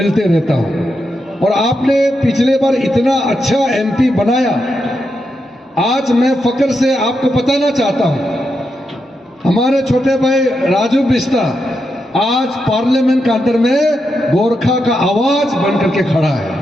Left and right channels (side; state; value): both; normal; correlation 0.85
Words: रहता हूँ। और आपने पिछले बार इतना अच्छा MP बनाया, आज मैं फक्र से आपको बताना चाहता हूँ, हमारे छोटे भाई राजू बिष्ट आज पार्लियामेंट के अंदर में गोरखा का आवाज बनकर के खड़ा है।